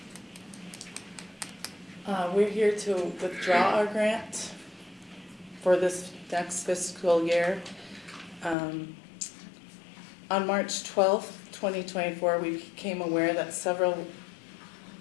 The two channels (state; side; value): drops out; right; at 8.6 s